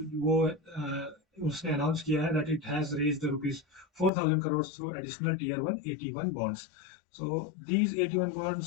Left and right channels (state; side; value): drops out; right; at 4.1 s